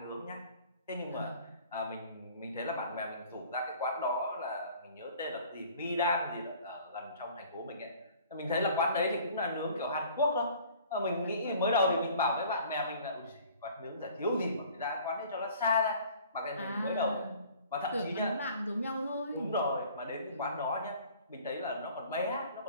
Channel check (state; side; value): inverted; both; correlation -0.52